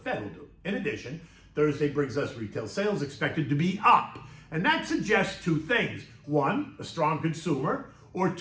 will do. In addition, Thursday brings us retail sales expected to be up. And that suggests two things. One, a strong consumer, or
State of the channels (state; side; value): identical; both; correlation 1.00